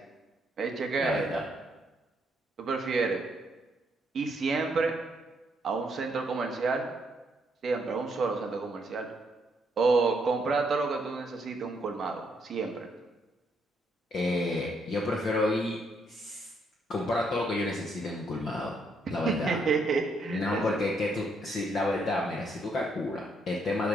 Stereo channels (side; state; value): both; normal; correlation 0.74